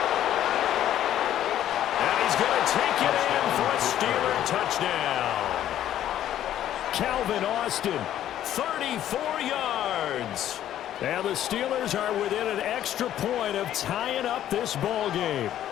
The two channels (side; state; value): right; quieter; 11.7 dB